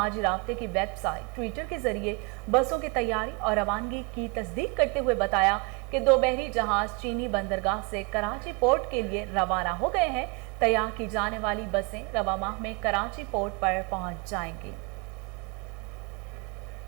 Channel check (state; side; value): quieter; left; 29.4 dB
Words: राब्ते की वेबसाइट ट्विटर के जरिए बसों की तैयारी और रवानगी की तस्दीक करते हुए बताया कि 2 बहरी जहाज चीनी बंदरगाह से कराची पोर्ट के लिए रवाना हो गए हैं। तैयार की जाने वाली बसें रवा माह में कराची पोर्ट पर पहुंच जाएंगी।